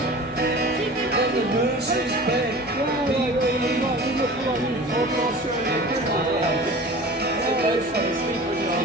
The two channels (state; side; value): normal; both; correlation 0.39